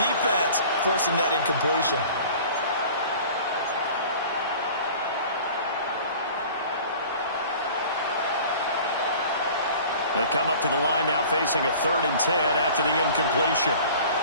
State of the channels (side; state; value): both; inverted; correlation -0.44